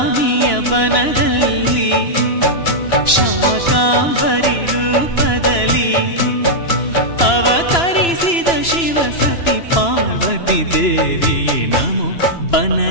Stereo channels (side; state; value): right; late; 2.9 ms